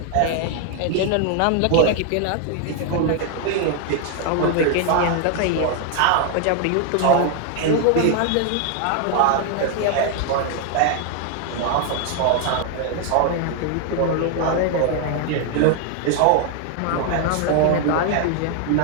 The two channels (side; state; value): both; different; correlation 0.00